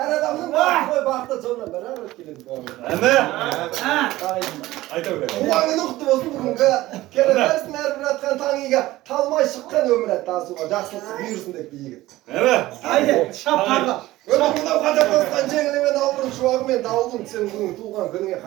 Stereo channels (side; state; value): left; quieter; 17.1 dB